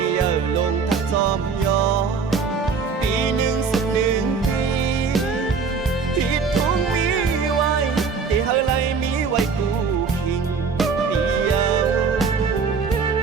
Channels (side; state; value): left; quieter; 5.3 dB